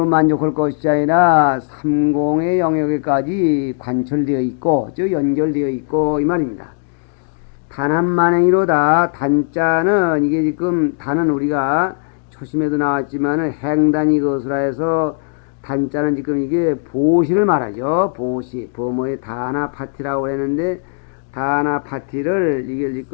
만족할 것이 아니라 삼공의 영역에까지 관철되어 있고, 즉 연결되어 있고, 이 말입니다. 단합만행이로다. 단자는 이게 지금 단은 우리가 초심에도 나왔지만은 행단이 것으로 해서 단자는 지금 이게 보시를 말하죠. 보시, 범어의 다나파티라고 했는데, 다나파티를 이게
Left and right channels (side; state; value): right; silent; digital silence